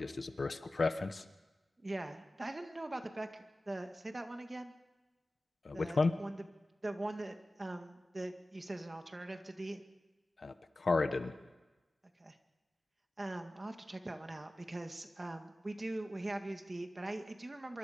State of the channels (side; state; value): both; normal; correlation 0.96